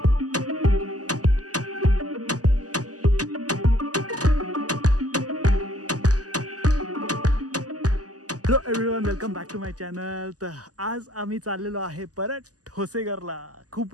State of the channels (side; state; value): left; late; 0.67 ms